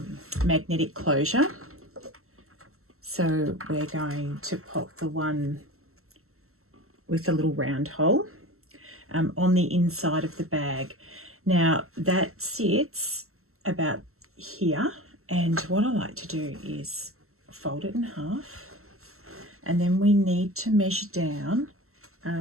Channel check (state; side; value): late; left; 0.63 ms